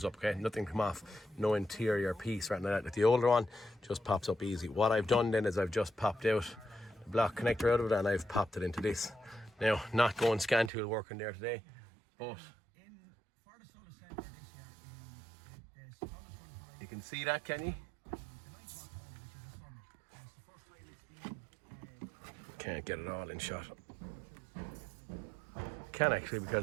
up. Okay, nothing come off, no interior piece or anything like that. Like the older one just pops up easy. What I've done then is I've just popped out the block connector out of it and I've popped it into this. Now, not going scan tool working there today, but you can see that, can you? Can't get it all in shot. Can actually,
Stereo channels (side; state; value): left; drops out; at 10.7 s